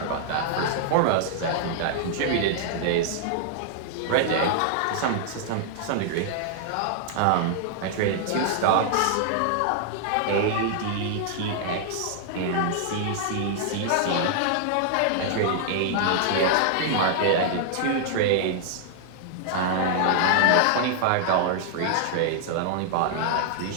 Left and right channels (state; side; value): different; both; correlation -0.01